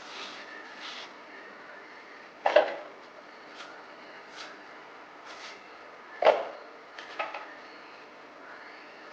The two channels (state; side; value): identical; both; correlation 1.00